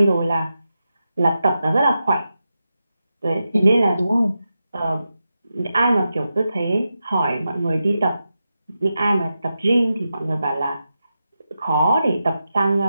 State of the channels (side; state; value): both; inverted; correlation -0.89